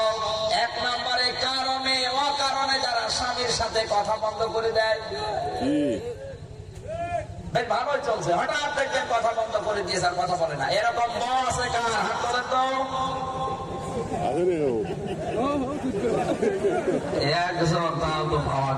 1 নম্বরে কারণে অকারণে যারা স্বামীর সাথে কথা বন্ধ করে দেয়। ভালোই চলছে, হঠাৎ দেখবেন কথা বন্ধ করে দিয়েছে, আর কথা বলে না। এরকম বউ আছে কার? হাত তোলেন তো। একজন তাও তো পাওয়া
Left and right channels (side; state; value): both; identical; correlation 1.00